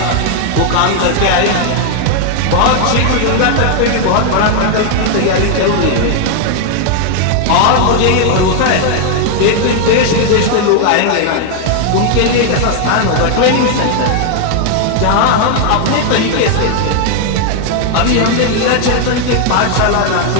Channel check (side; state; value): both; different; correlation 0.00